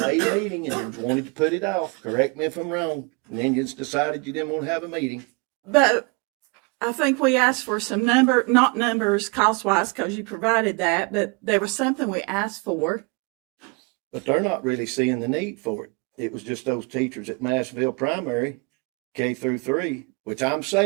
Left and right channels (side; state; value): left; quieter; 30.3 dB